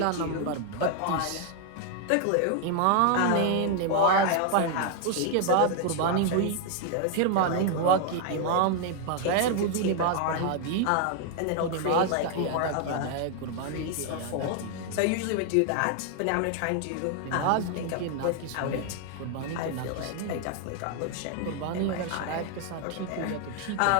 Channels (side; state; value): both; different; correlation 0.00